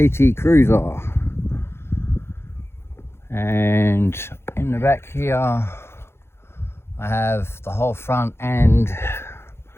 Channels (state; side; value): late; right; 0.12 ms